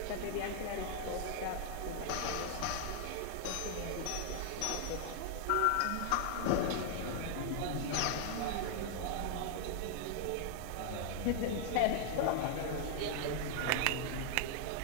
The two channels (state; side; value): different; both; correlation 0.00